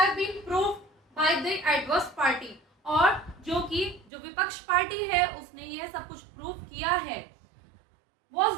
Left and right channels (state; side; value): drops out; left; at 4.1 s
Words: been proved by the adverse party, और जो विपक्ष पार्टी है उसने यह सब कुछ प्रूव किया है, was